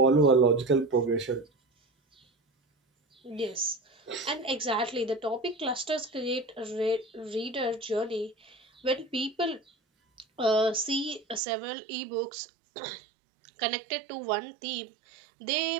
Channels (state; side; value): drops out; left; at 11.4 s